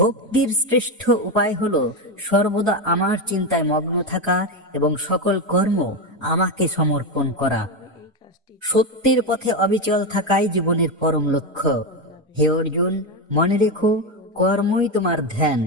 শ্রেষ্ঠ উপায় হলো সর্বদা আমার চিন্তায় মগ্ন থাকা এবং সকল কর্ম আমাকে সমর্পণ করা। সত্যের পথে অবিচল থাকাই জীবনের পরম লক্ষ্য। হে অর্জুন, মনে রেখো, কর্মই তোমার ধ্যান।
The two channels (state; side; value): normal; both; correlation 0.12